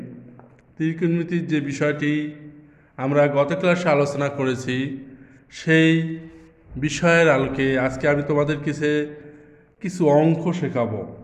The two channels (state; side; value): identical; both; correlation 1.00